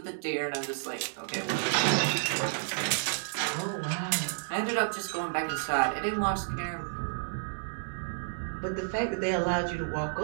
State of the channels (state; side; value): silent; left; 57 dB below the other